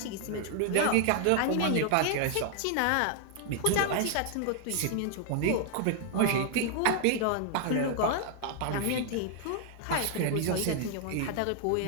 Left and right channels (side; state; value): both; different; correlation 0.00